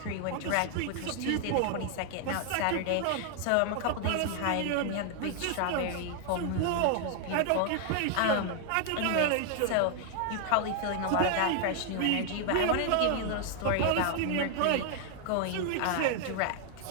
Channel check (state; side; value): different; both; correlation 0.00